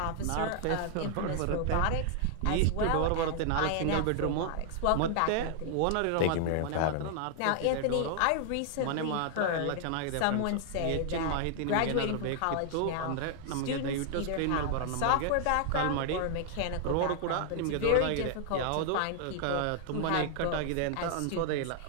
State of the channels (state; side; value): different; both; correlation 0.00